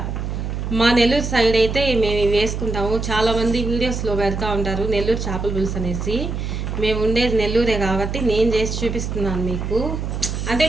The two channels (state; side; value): noise; right; hum, 4 dB below the sound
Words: మా నెల్లూరు సైడ్ అయితే మేము వేసుకుంటాము. చాలామంది వీడియోస్లో పెడతా ఉంటారు నెల్లూరు చేపల పులుసు అనేసి. మేము ఉండేది నెల్లూరే కాబట్టి నేను చేసి చూపిస్తున్నాను మీకు. అంటే